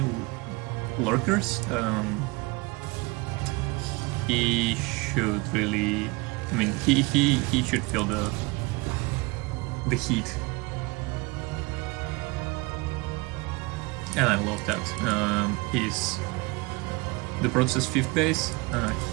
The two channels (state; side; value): quieter; left; 25.3 dB